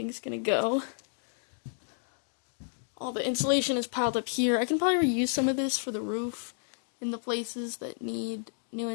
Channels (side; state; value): right; silent; digital silence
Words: gonna go. All the insulation is piled up here. I can probably reuse some of this for the roof in the places that need new